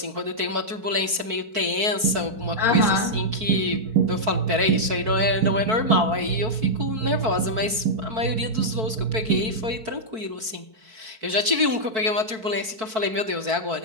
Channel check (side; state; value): left; late; 4.6 ms